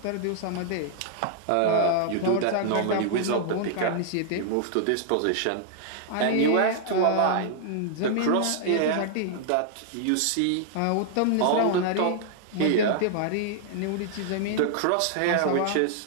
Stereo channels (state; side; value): different; both; correlation -0.01